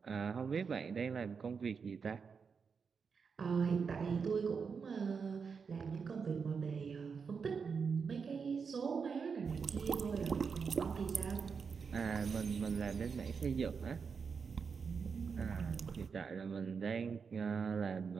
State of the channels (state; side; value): quieter; left; 5.8 dB